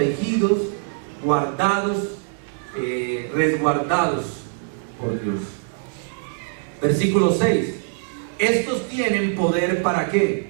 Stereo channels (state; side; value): silent; left; digital silence